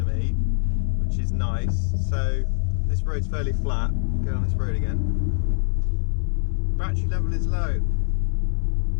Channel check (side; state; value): right; silent; 58 dB below the other